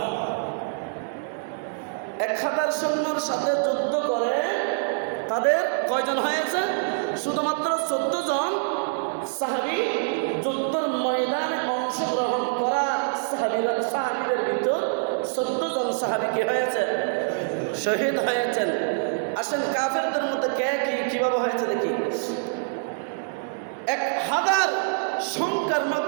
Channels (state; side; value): silent; left; 61 dB below the other